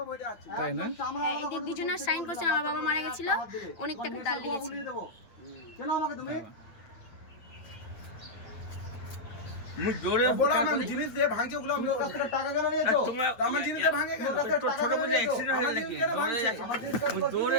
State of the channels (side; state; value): right; late; 8.9 ms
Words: ভয় দেখাচ্ছি তাই না? হ্যাঁ এদের দুজনের সাইন করছে, আমার বাবা মারা গেছিল অনেক টাকা ডাল নিয়েছে। বুলিয়ে দেবো। কেন আমাকে তুমি? মুই জোরে বলো আমার জিনিস দিয়ে ভাঙছে ওগুলো আমি তুমি ওর কাছ থেকে টাকা কেন নিয়েছো? তোমরা আমার জিনিস দিয়ে ভাঙে কেন ওর কাছ থেকে তোর টাকা ছোট কেন বুঝে নিয়েছো? অ্যাক্সিডেন্ট হয়ে নাকি আমার জিনিস কাজ মুই করতে জোরে